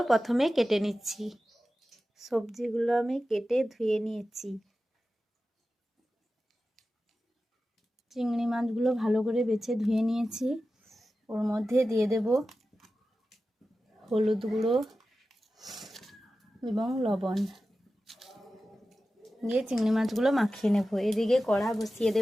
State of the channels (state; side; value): normal; both; correlation 0.94